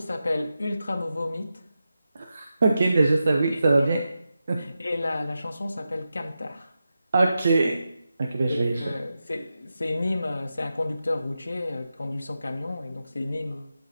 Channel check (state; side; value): inverted; both; correlation -0.90